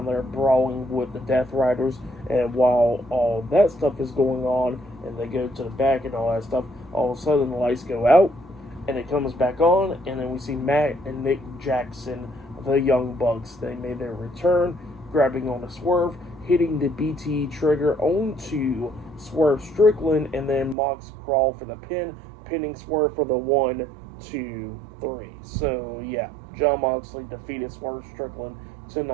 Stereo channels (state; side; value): drops out; left; at 20.8 s